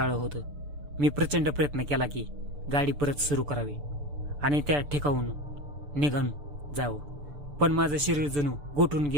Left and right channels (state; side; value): late; left; 6.9 ms